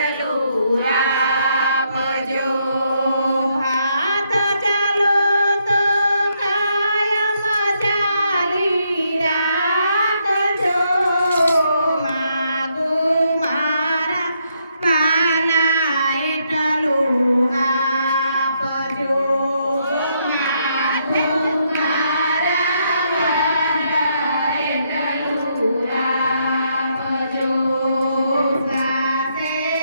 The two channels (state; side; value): inverted; both; correlation -0.76